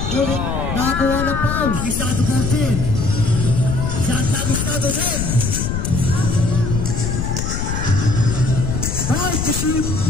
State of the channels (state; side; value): noise; left; rumble, 2 dB below the sound